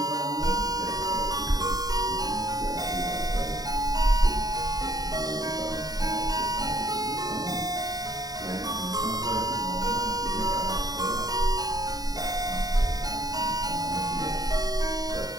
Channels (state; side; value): late; left; 0.18 ms